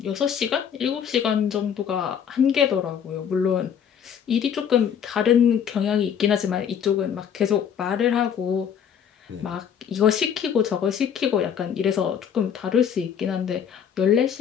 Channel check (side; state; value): right; quieter; 8.2 dB